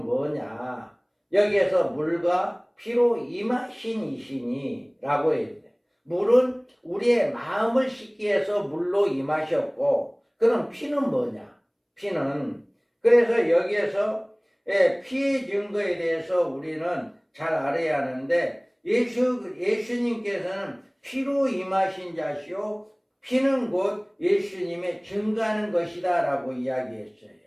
뭐냐? 여기에서 물과 피로 임하신 이시니 라고 해야 돼. 물은 우리의 마음을 씻기 위해서 물로 임하셨고, 그럼 피는 뭐냐? 피는, 그래서 여기에서 피의 증거에 대해서 우리는 잘 알아야 하는데, 예수님께서는 피로 임하신 자시오, 피는 곧 예수님의 증거하는 것이다 라고 이야기했어요.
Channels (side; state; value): both; identical; correlation 1.00